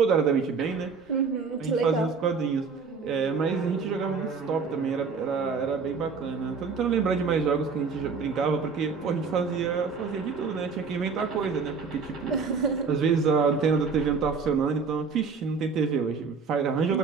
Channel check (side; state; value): left; quieter; 5.2 dB